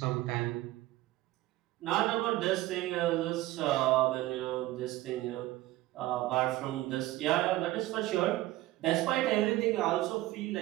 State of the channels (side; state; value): left; quieter; 17.0 dB